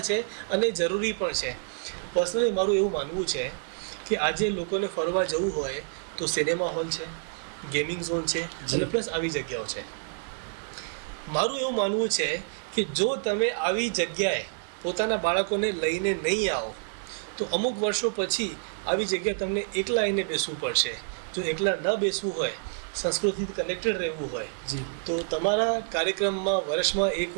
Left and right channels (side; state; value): left; silent; 59 dB below the other